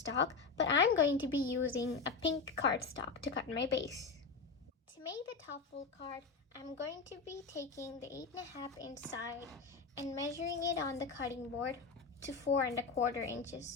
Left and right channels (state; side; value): quieter; right; 4.7 dB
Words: but I'm going to be using a pink cardstock to cut my base. To make the top fold card, I'm going to be taking the 8.5 inch side and measuring it on the cutting board to 4.25